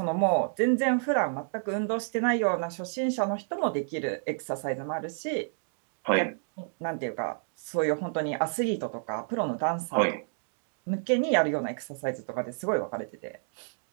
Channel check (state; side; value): silent; left; digital silence